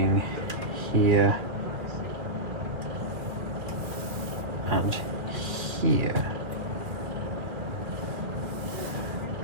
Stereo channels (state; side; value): late; left; 2.4 ms